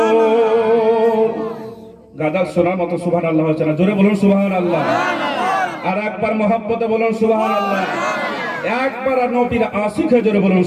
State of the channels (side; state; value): both; identical; correlation 1.00